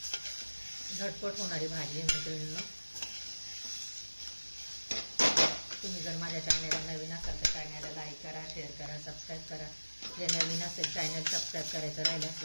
झटपट होणारी भाजी मैत्रिणींनो. तुम्ही जर माझ्या चॅनलला नवीन असाल तर चॅनलला लाईक करा, शेअर करा, सबस्क्राईब करा. जे नवीन असेल चॅनल सबस्क्राईब करायचं राहिलं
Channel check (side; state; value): both; inverted; correlation -1.00